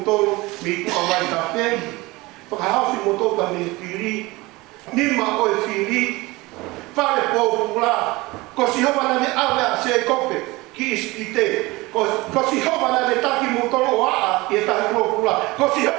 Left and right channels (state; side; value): quieter; left; 21.9 dB